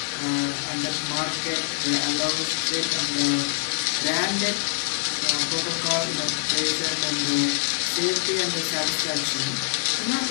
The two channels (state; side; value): silent; right; digital silence